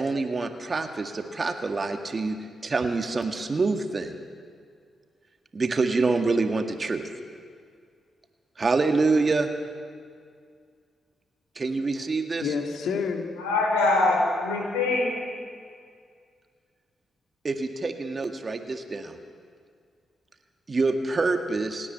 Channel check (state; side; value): normal; both; correlation 0.82